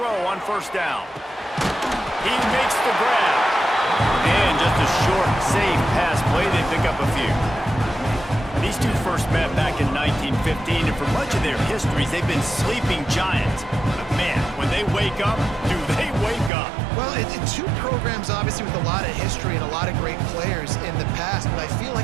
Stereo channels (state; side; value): drops out; left; at 16.5 s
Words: on first down. He makes the grab. And just a short, safe pass play. They pick up a few. These two first met back in 1915, and for much of their histories, they've been sleeping giants. But man, when they wake up, do they wake up? Well, two programs, obviously, with a lot of history and a lot of great players in the past, but I feel